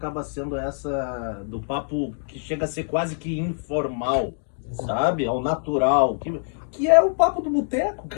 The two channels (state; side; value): silent; right; digital silence